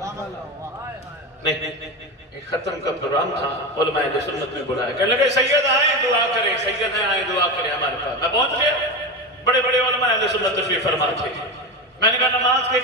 نہیں ایک ختم کا پروگرام تھا، علماء اہل سنت میں بلایا، کہنے لگے سید آئیں دعا کریں، سید آئیں دعا کریں ہمارے پاس. میں پہنچ گیا، بڑے بڑے علماء اہل سنت تشریف فرما تھے. میں نے کہا نماز کے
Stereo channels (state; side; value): normal; both; correlation 0.20